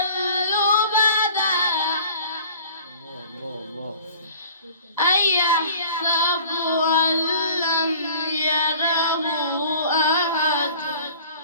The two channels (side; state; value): both; inverted; correlation -0.47